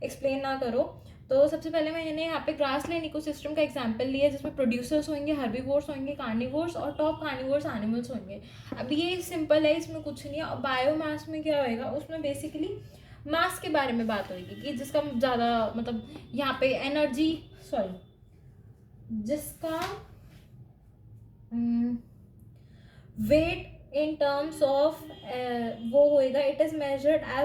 एक्सप्लेन ना करो। तो सबसे पहले मैंने यहाँ पे ग्रासलैंड इकोसिस्टम का एग्जांपल लिया है, जिसमें प्रोड्यूसर्स होंगे, हर्बीवोर्स होंगे, कार्निवोर्स और टॉप कार्निवोर्स एनिमल्स होंगे। अब ये सिंपल है, इसमें कुछ नहीं है। और बायोमास में क्या होएगा, उसमें बेसिकली मास के बारे में बात होगी कि जिसका ज़्यादा मतलब यहाँ पे एनर्जी जिसका वेट इन टर्म्स ऑफ वो होएगा, it is measured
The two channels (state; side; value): identical; both; correlation 1.00